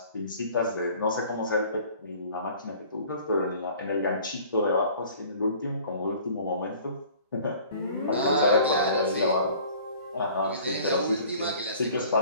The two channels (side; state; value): both; inverted; correlation -0.49